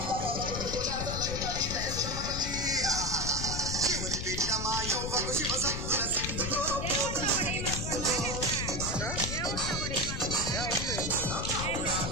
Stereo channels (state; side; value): noise; left; rumble, 4 dB below the sound